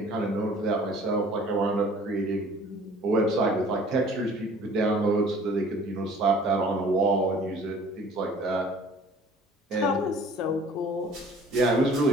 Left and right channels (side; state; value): both; normal; correlation 0.51